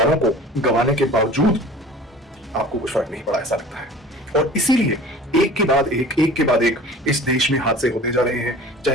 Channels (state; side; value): normal; both; correlation 0.43